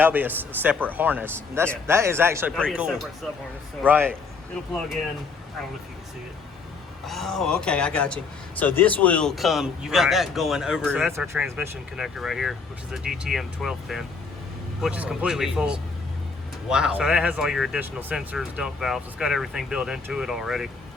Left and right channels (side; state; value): right; quieter; 4.6 dB